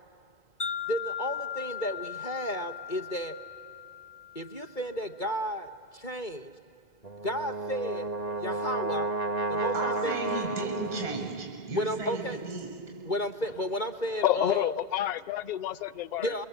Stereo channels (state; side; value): late; right; 2.0 ms